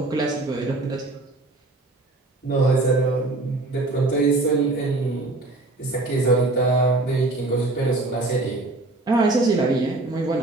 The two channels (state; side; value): quieter; left; 3.0 dB